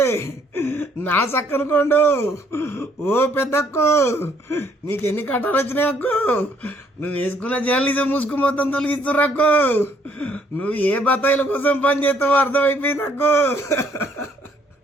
నా చక్కనుకోండు, ఓ పెద్దక్కు, నీకు ఎన్ని కట్టాలు వచ్చినాయి అక్కు, నువ్వు వేసుకున్న జర్నలిజం ముసుగు మొత్తం తొలగిస్తుర్రక్కు, నువ్వు ఏ బత్తాయిల కోసం పని చేస్తావో అర్థమైపోయింది అక్కు.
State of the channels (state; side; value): normal; both; correlation 0.66